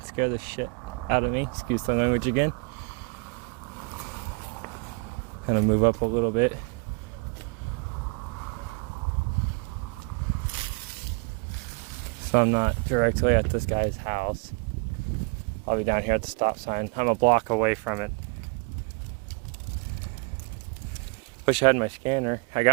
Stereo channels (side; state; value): left; quieter; 30.8 dB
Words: scare the shit out of me. Excuse the language again. I'm gonna move up a little bit. So I'm not directly at this guy's house. I'll be down here at the stop sign. I'm a block away from it. Wish I had my scanner. I